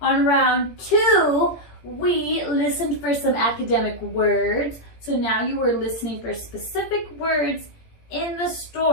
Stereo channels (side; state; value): right; late; 17 ms